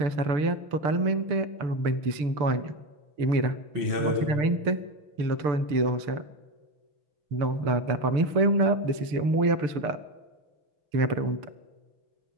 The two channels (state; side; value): late; left; 6.8 ms